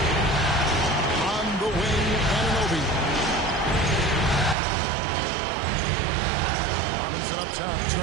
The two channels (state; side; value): drops out; left; at 4.5 s